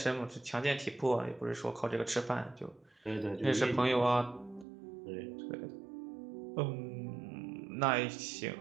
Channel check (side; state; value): left; drops out; at 4.7 s